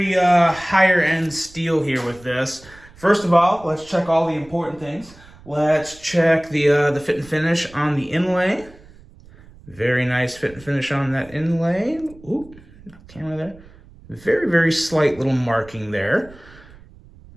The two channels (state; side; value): noise; right; rumble, 23 dB below the sound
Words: higher end steel here with this. First of all, let's check all the important things. Let's check the fit and finish on the inlay. Very nice fit and finish on that inlay. Ooh, camera there. Very, very slight little marking there.